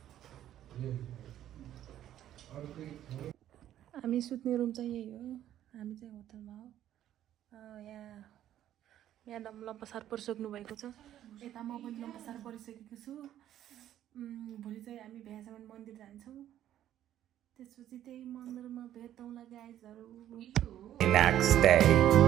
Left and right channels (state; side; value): quieter; left; 11.8 dB